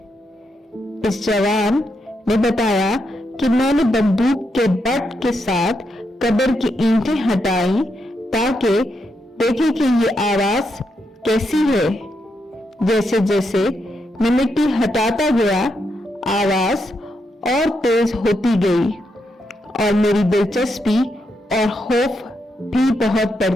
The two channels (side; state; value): both; normal; correlation 0.82